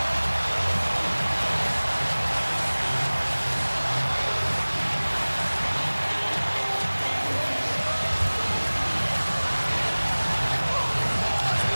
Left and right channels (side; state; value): both; inverted; correlation -1.00